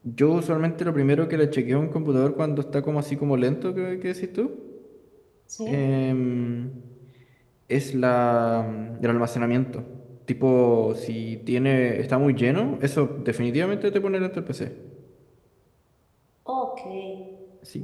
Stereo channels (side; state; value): both; identical; correlation 1.00